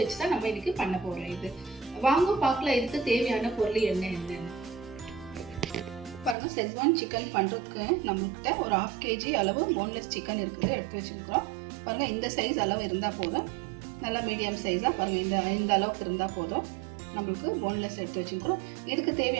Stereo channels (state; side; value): drops out; left; at 6.4 s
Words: வச்சு தான் நம்ம இன்னைக்கு பண்ண போகிறோம். இது வாங்க பார்க்கலாம் இதுக்கு தேவையான பொருள் என்னென்னு பாருங்கள். செஸ்வான் சிக்கன் பண்ணுறதுக்கு நம்மள்கிட்ட ஒரு 1/2 kg அளவு போன்லெஸ் சிக்கன் இருக்குது, எடுத்து வச்சுருக்கிறோம். பாருங்கள், இந்த சைஸ் அளவு இருந்தால் போதும், நல்லா மீடியம் சைஸாக பாருங்கள், இந்த அளவுக்கு இருந்தால் போதும். நம்மளுக்கு போன்லெஸ் எடுத்து வச்சுருக்கிறோம். இதுக்கு